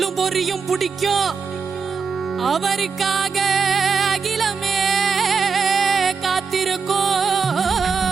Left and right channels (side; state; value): left; quieter; 5.6 dB